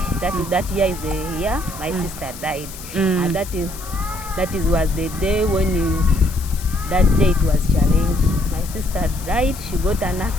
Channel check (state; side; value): noise; left; hiss, 14 dB below the sound